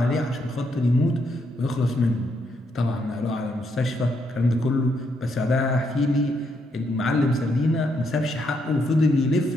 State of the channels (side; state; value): both; normal; correlation 0.76